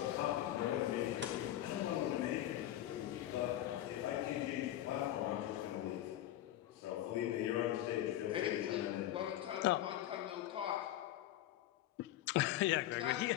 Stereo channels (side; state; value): right; quieter; 13.3 dB